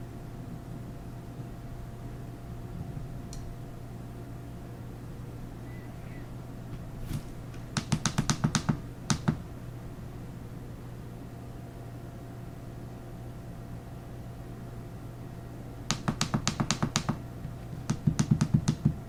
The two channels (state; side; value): identical; both; correlation 1.00